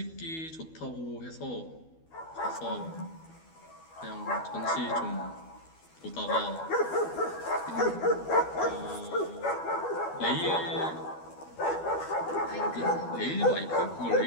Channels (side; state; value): right; late; 12 ms